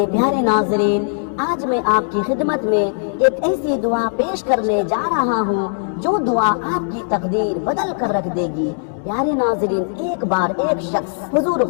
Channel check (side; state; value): right; silent; digital silence